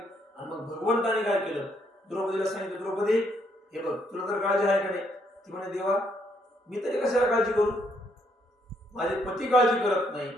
आणि मग भगवंताने काय केलं? द्रौपदीला सांगितलं, द्रौपदी हे बघ तुला तर काळजी आहे का नाही? ती म्हणे देवा मी तरी कशाला काळजी करू, माझे पती काळजी करत नाही,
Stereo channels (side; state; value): both; normal; correlation 0.72